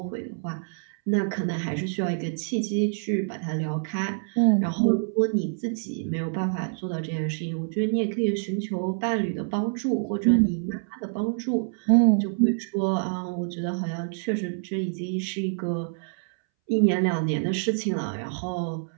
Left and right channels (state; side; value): silent; left; 61 dB below the other